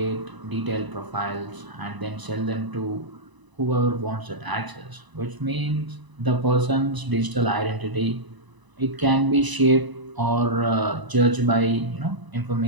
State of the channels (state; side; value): late; left; 1.0 ms